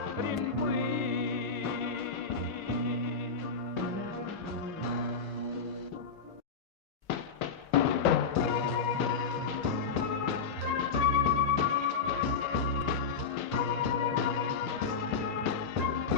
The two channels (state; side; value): quieter; right; 5.3 dB